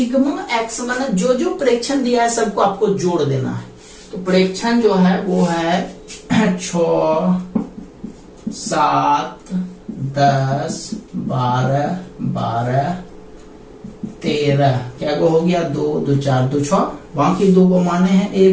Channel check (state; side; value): identical; both; correlation 1.00